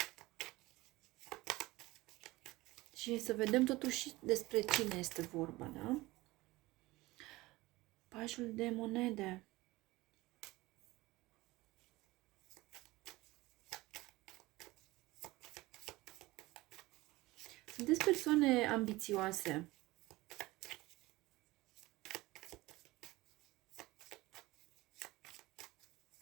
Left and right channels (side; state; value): left; quieter; 20.0 dB